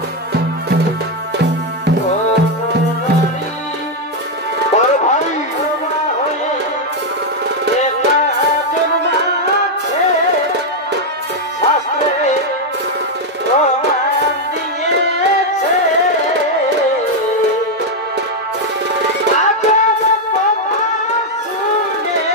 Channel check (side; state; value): both; normal; correlation 0.02